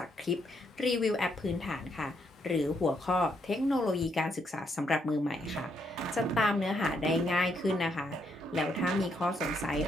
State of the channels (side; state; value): both; normal; correlation 0.75